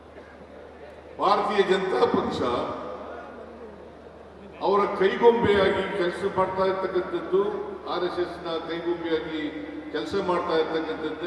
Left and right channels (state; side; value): identical; both; correlation 1.00